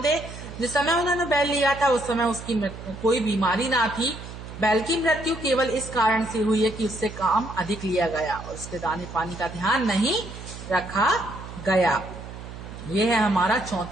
दे। जिस समय उन्होंने बैल लिया था उस समय उसकी कोई बीमारी ना थी। बैल की मृत्यु केवल इस कारण से हुई है कि उससे काम अधिक लिया गया और उसके दाने पानी का ध्यान नहीं रखा गया। यह है हमारा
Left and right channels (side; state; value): right; noise; hum, 12 dB below the sound